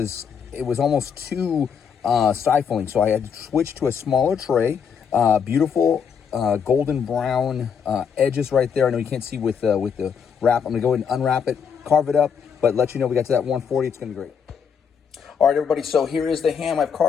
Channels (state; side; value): quieter; right; 7.0 dB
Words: it was almost too stifling, so I had to switch to a smaller tray. Beautiful golden brown edges right there. I know you can't see with the wrap. I'm gonna go ahead and unwrap it, carve it up, but let you know we got to that 140. It's gonna be great. All right, everybody, so here is the ham. I've